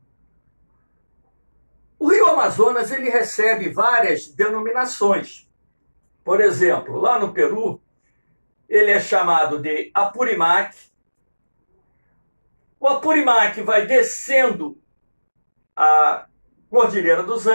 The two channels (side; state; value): both; inverted; correlation -1.00